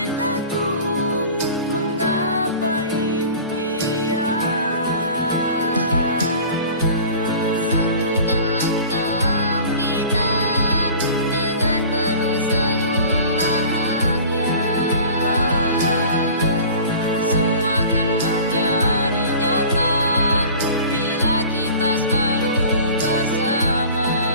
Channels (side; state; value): both; inverted; correlation -0.42